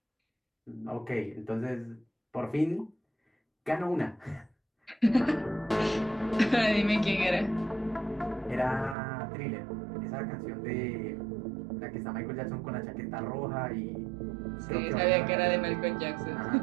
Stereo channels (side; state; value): left; drops out; at 9.0 s